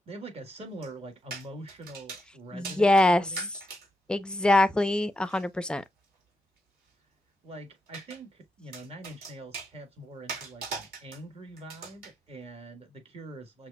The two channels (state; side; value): normal; both; correlation 0.84